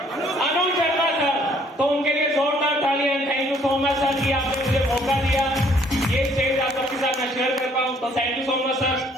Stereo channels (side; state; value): both; normal; correlation 0.62